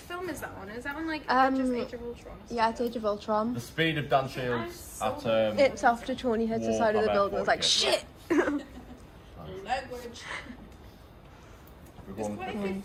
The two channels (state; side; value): identical; both; correlation 1.00